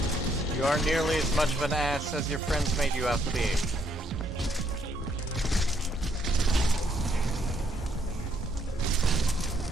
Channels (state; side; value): normal; both; correlation 0.71